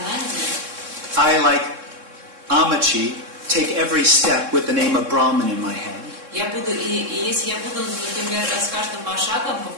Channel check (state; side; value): late; left; 3.6 ms